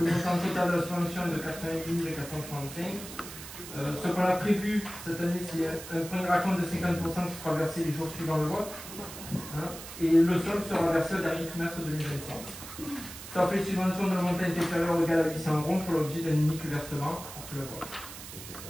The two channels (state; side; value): noise; right; hiss, 12 dB below the sound